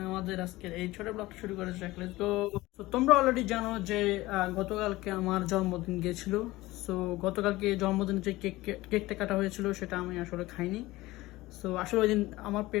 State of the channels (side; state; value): right; quieter; 18.8 dB